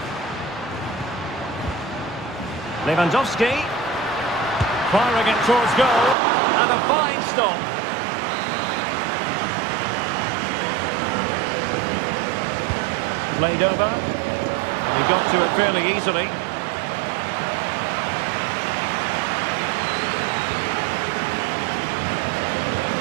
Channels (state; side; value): drops out; left; at 6.2 s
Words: Lewandowski. Firing it towards goal. And a fine stop. Played over. And he got to it fairly easily.